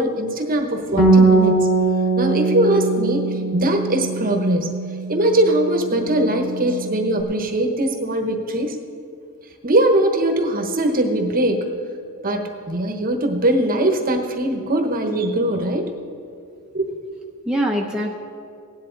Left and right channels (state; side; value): normal; both; correlation 0.31